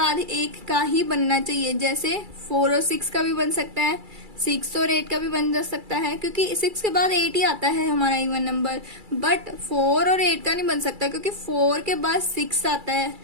एक का ही बनना चाहिए। जैसे 4 और 6 का भी बन सकता है, 6 और 8 का भी बन जा सकता है, क्योंकि 6 के बाद 8 ही आता है हमारा इवन नंबर। बट 4 और 8 का नहीं बन सकता, क्योंकि 4 के बाद 6 आता है,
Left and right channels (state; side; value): late; left; 2.3 ms